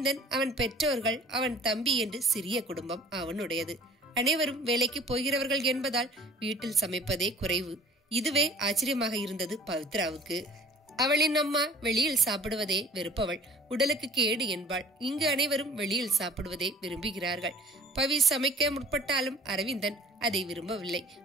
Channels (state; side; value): normal; both; correlation 0.48